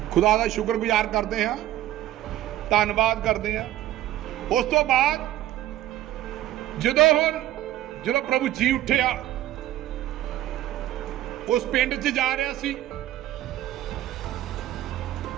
खुदा का शुक्रगुजार करते हैं ਧੰਨਵਾਦ ਕਰਦੇ ਹਾਂ। ਉਸ ਤੋਂ ਬਾਅਦ ਜਦੋਂ ਪ੍ਰਭੂ ਜੀ ਉੱਠਿਆ, ਉਸ ਪਿੰਡ 'ਚ ਜਾ ਰਿਹਾ ਸੀ,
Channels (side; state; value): left; quieter; 13.8 dB